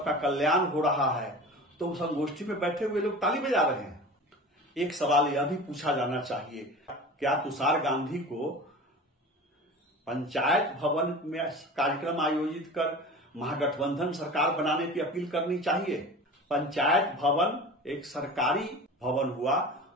कल्याण हो रहा है, तो संगोष्ठी में बैठे हुए लोग ताली बजा रहे हैं। एक सवाल यह भी पूछा जाना चाहिए, क्या तुषार गांधी को पंचायत भवन में कार्यक्रम आयोजित कर महागठबंधन सरकार बनाने की अपील करनी चाहिए? पंचायत भवन एक सरकारी भवन हुआ,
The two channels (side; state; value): both; normal; correlation 0.35